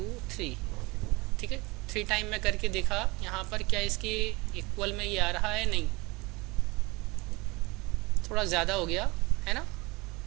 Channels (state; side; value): quieter; left; 24.3 dB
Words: 3, ठीक है, 3 टाइम मैं करके देखा यहाँ पर क्या इसकी इक्वल में ये आ रहा है, नहीं, थोड़ा ज़्यादा हो गया है ना।